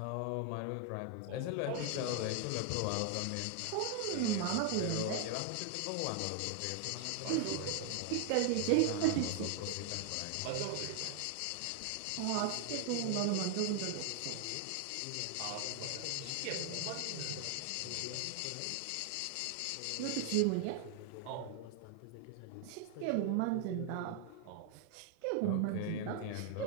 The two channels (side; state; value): both; different; correlation 0.00